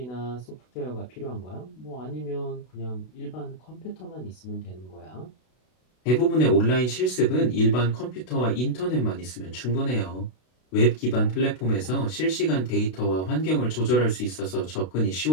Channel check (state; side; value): late; right; 32 ms